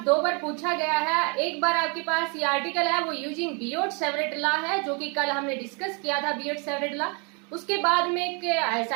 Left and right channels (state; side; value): quieter; left; 33.7 dB